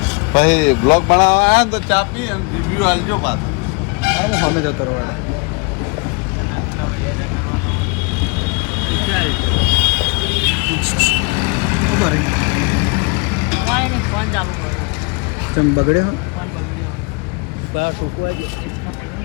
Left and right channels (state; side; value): quieter; right; 31.0 dB